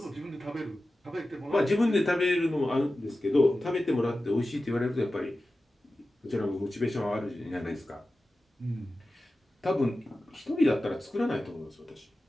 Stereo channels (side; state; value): both; normal; correlation 0.94